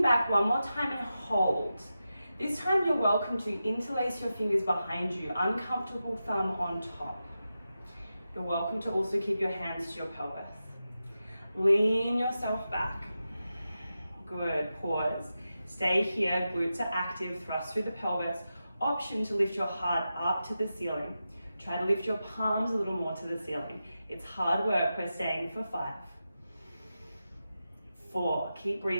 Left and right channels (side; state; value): both; inverted; correlation -0.91